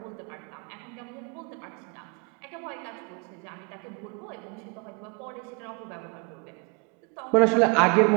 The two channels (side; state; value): left; quieter; 32.5 dB